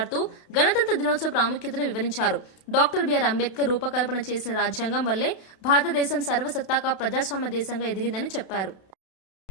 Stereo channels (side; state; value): right; late; 31 ms